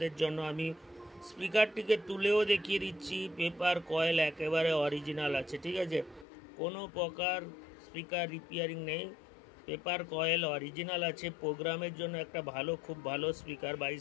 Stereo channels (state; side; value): drops out; right; at 6.2 s